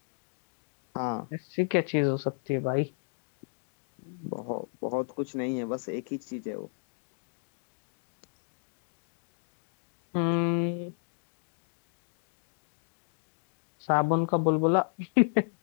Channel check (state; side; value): silent; right; digital silence